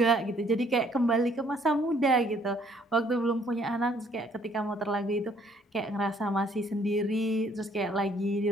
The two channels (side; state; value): both; normal; correlation 0.63